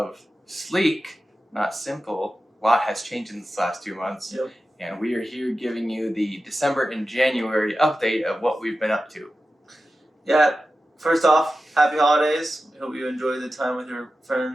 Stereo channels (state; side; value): normal; both; correlation 0.93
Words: Sleke, not Simple. A lot has changed in this last 2 months. Yep. And we are here giving you the December and January update of what we've been up to. Yeah, first off, happy holidays. We hope you enjoy the time with your